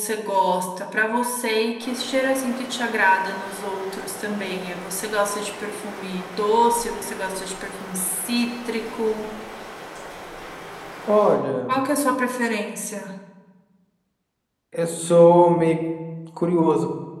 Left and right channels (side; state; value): both; identical; correlation 1.00